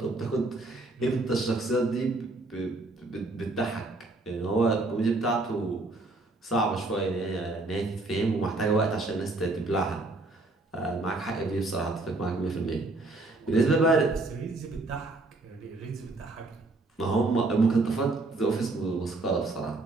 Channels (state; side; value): quieter; left; 3.1 dB